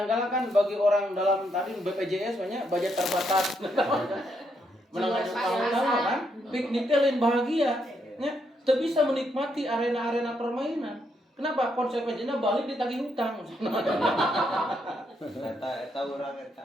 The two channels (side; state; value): both; normal; correlation 0.77